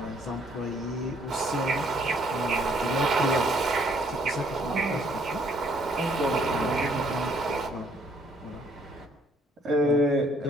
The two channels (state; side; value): normal; both; correlation 0.65